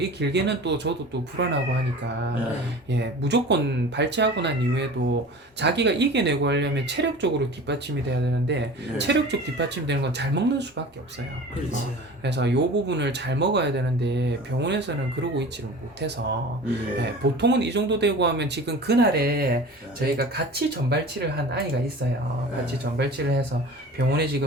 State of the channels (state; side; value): normal; both; correlation 0.38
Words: 길게는 또 저도 또 불안하고 하니까 예 무조건 발치하고 난 이후에도 자기가 이겨내고 하려면 체력적으로 뒷받침이 돼야 되는데 체력적 뒷받침이 되는 건 잘 먹는 수밖에 없어요. 그렇지. 그래서 이 부분을 잘 먹어야 되는데 병원에서는 그러고 있지를 못해서 예, 보통은 이 정도 되고 하면 지금 그날에 저희가 같이 전발치를 한 아이가 있어요. 같이 전발치를 해서 병원에